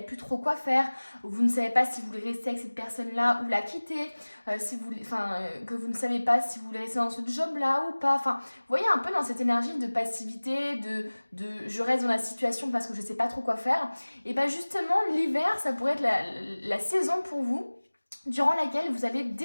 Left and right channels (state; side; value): inverted; both; correlation -1.00